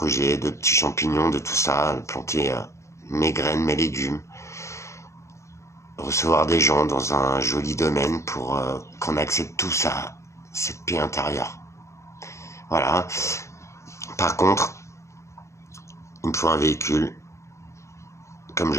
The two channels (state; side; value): late; right; 0.14 ms